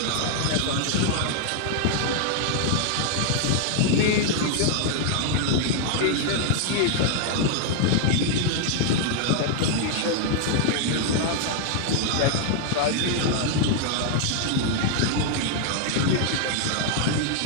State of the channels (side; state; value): both; different; correlation 0.00